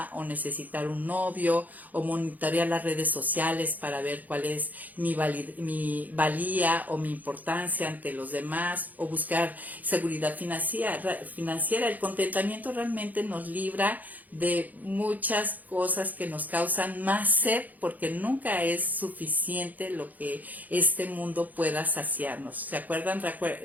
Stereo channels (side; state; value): left; late; 0.081 ms